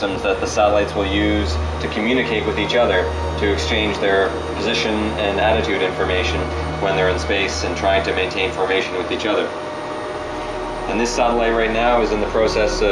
that the satellites will use to communicate with each other, to exchange their position and attitude information when they're in space and trying to maintain formation with each other. And this satellite right now is in the process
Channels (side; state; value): both; identical; correlation 1.00